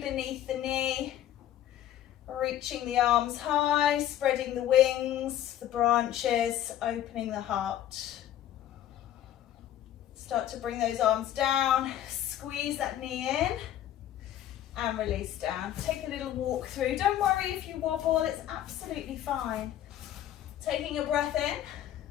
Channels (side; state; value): right; quieter; 11.9 dB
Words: the knee. Reaching the arms high, spreading the wings, the branches, opening the heart. Start to bring those arms down. Squeeze that knee in. And release down. Take a little walk through. Don't worry if you wobble, it's absolutely fine. Taking a breath in.